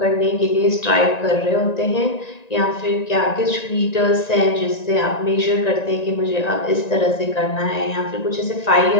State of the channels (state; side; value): late; right; 1.9 ms